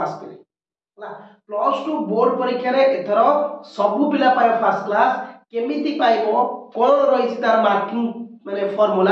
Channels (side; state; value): both; identical; correlation 1.00